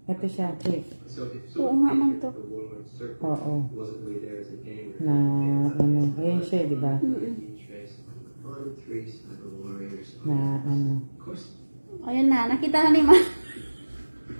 Ito siya, check. Oo nga, ma'am, to. The Warlord Circle Oo. wasn't really there as a game. Na ano. Ayun siya, di ba? Na ano. Ayun na, nakita na ni ma'am.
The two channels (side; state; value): both; inverted; correlation -1.00